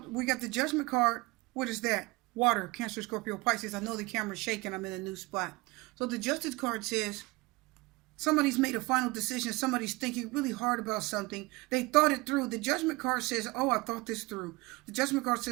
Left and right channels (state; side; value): quieter; left; 23.7 dB